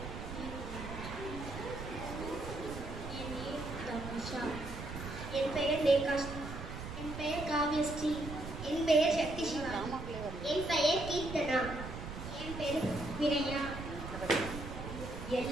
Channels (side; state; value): right; noise; rumble, 8 dB below the sound